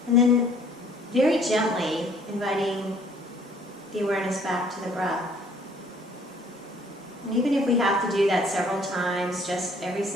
and then very gently inviting the awareness back to the breath. And even if we have to do that several times, just every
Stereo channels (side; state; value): both; normal; correlation 0.59